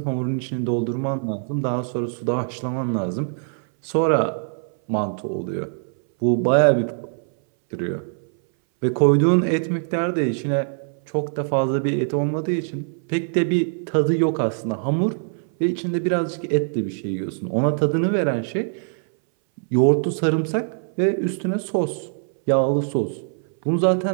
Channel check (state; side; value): silent; left; 60 dB below the other